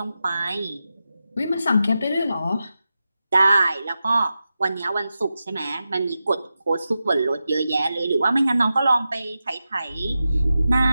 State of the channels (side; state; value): both; inverted; correlation -0.91